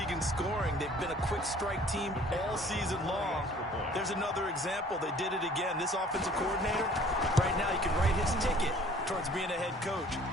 in scoring. They've been a quick strike team all season long. There's another example. They did it again. This offensive coordinator, right now, you can write his ticket. towards being a head coach.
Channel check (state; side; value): normal; both; correlation 0.53